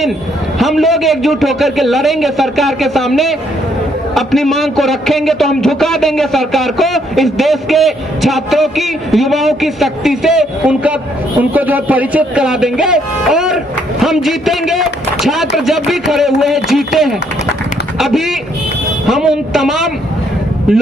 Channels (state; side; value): normal; both; correlation 0.70